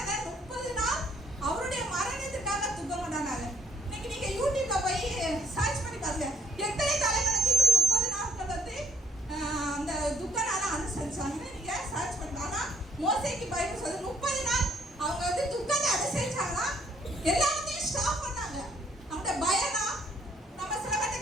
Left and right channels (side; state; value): both; normal; correlation 0.62